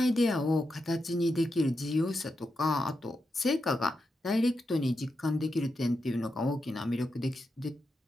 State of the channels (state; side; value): normal; both; correlation 0.87